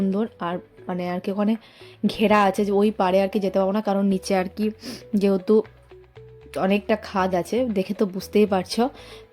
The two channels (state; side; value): identical; both; correlation 1.00